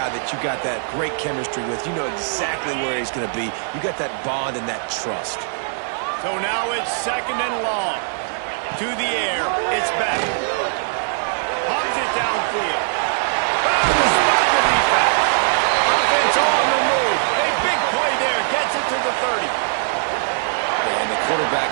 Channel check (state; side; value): silent; left; digital silence